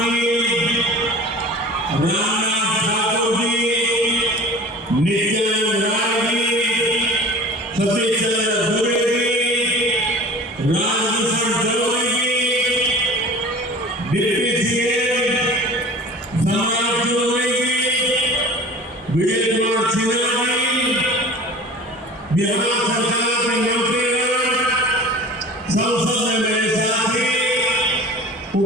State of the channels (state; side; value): normal; both; correlation 0.41